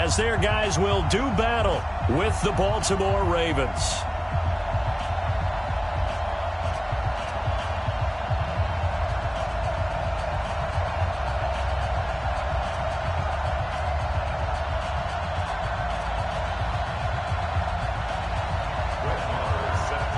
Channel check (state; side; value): identical; both; correlation 1.00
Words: their guys will do battle with the Baltimore Ravens.